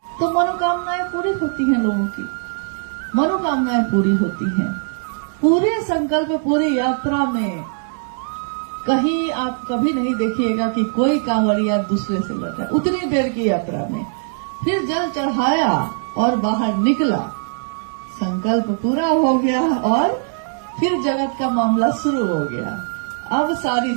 तो मनोकामनाएं पूरी होती हैं, लोगों की मनोकामनाएं पूरी होती हैं। पूरे संकल्प, पूरी यात्रा में कहीं आप कभी नहीं देखिएगा कि कोई कांवड़िया दूसरे से लड़ा। उतनी देर की यात्रा में फिर जल चढ़ाया और बाहर निकला, संकल्प पूरा हो गया और फिर जगत का मामला शुरू हो गया। अब सारी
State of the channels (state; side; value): silent; left; digital silence